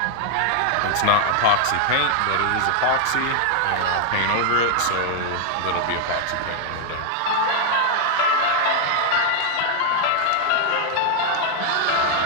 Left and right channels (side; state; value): both; different; correlation 0.00